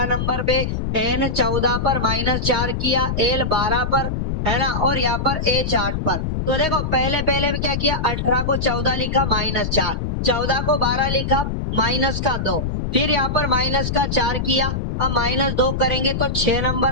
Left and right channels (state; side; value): noise; left; rumble, 2 dB below the sound